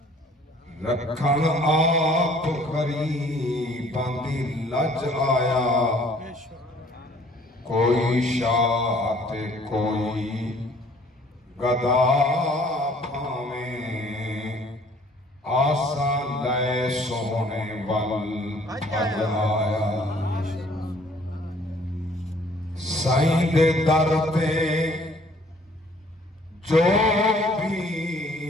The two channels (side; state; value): both; normal; correlation 0.57